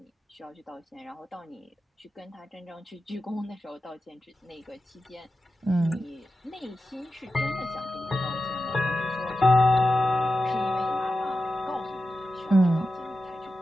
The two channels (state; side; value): normal; both; correlation 0.91